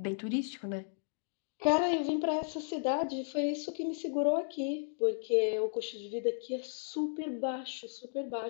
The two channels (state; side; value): silent; right; digital silence